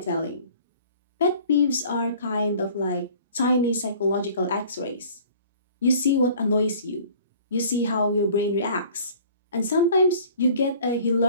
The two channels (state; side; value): inverted; both; correlation -0.50